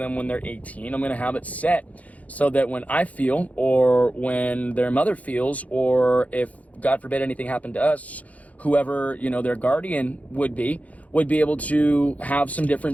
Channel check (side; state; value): right; late; 0.070 ms